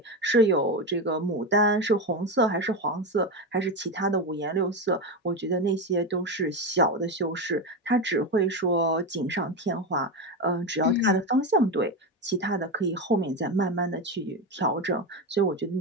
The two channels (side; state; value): both; normal; correlation 0.15